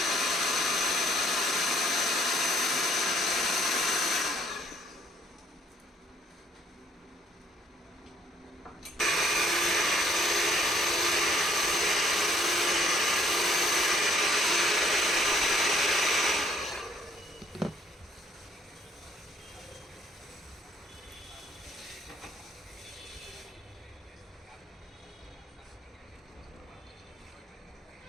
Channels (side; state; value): both; normal; correlation 0.64